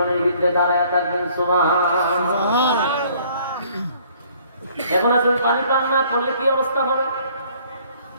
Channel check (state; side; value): inverted; both; correlation -0.59